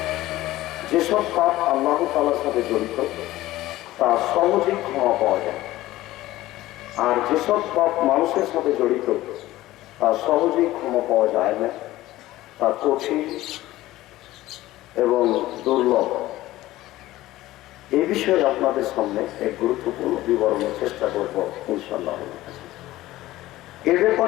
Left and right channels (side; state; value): right; quieter; 16.4 dB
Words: যেসব পাপ আল্লাহ তাআলার সাথে জড়িত তা সহজেই ক্ষমা পাওয়া যায়, আর যেসব পাপ মানুষের সাথে জড়িত তা সহজেই ক্ষমা পাওয়া যায় না, তা কঠিন এবং দুর্লভ। এই বিষয়ে আপনাদের সামনে এক গুরুত্বপূর্ণ বিবরণের চেষ্টা করব ইনশাআল্লাহ। এর